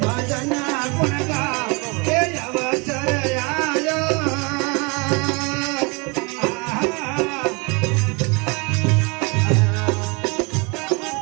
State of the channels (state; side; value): quieter; left; 29.7 dB